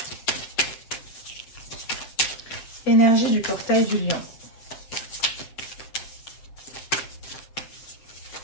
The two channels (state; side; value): late; right; 7.7 ms